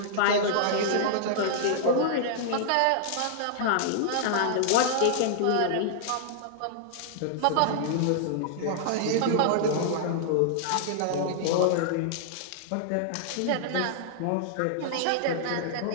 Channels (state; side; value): different; both; correlation -0.01